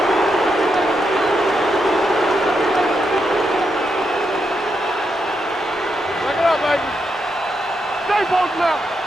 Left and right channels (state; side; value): normal; both; correlation 0.82